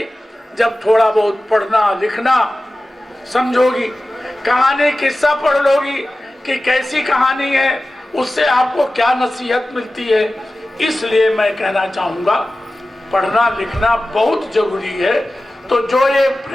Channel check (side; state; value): both; normal; correlation 0.95